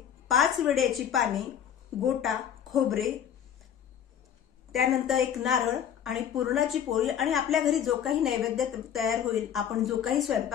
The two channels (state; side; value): quieter; right; 9.2 dB